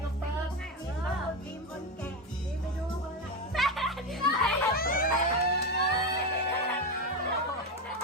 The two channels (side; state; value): both; normal; correlation 0.14